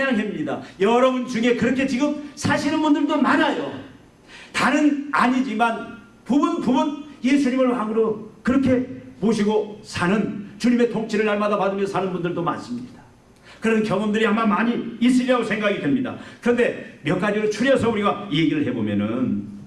여러분 중에 그렇게 지금 사시는 분들도 많아요. 다는 아니지만 부분 예수님을 왕으로 그렇게 모시고 사는, 주님의 통치를 날마다 받으며 사는 분들도 많습니다. 그런 경험들이 아마 많이 있으리라고 생각이 됩니다. 그런데 몇 가지로 추려서 우리가 얘기를 해보면은,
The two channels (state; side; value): identical; both; correlation 1.00